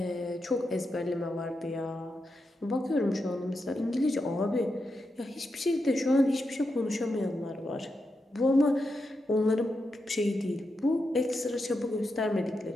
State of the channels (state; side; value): normal; both; correlation 0.86